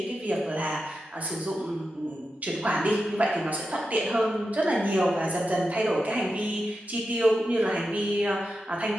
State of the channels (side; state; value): both; normal; correlation 0.89